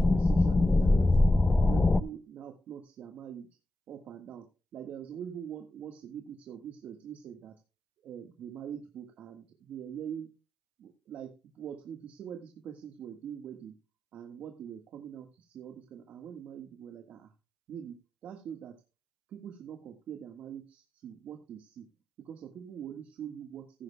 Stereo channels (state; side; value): normal; both; correlation 0.92